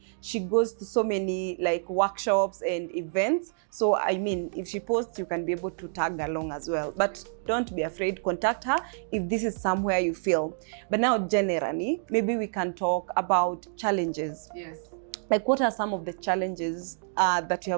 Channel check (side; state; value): left; silent; digital silence